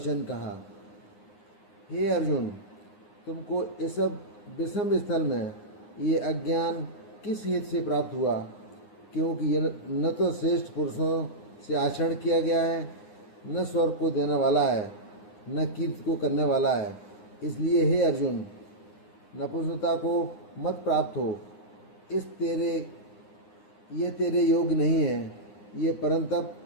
कहा, हे अर्जुन, तुमको इस सब विषम स्थल में ये अज्ञान किस हेतु से प्राप्त हुआ? क्योंकि यह न तो श्रेष्ठ पुरुषों से आचरण किया गया है, न स्वर्ग को देने वाला है, न कीर्ति को करने वाला है। इसलिए हे अर्जुन, नपुंसकता को मत प्राप्त हो। ये तेरे योग्य नहीं है। ये परंतप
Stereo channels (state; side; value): late; right; 9.7 ms